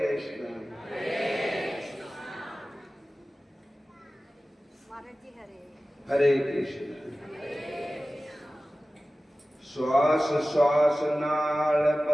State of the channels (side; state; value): both; normal; correlation 0.96